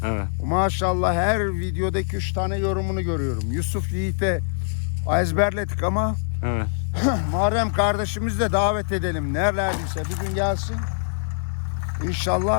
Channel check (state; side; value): silent; right; 60 dB below the other